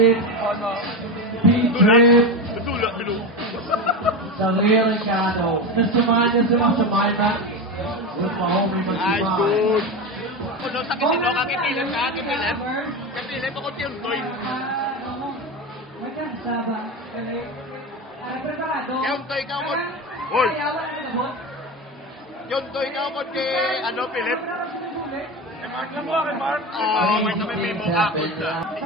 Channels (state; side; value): normal; both; correlation 0.20